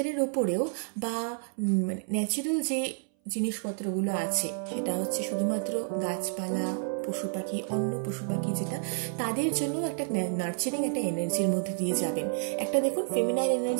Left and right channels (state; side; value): silent; left; 58 dB below the other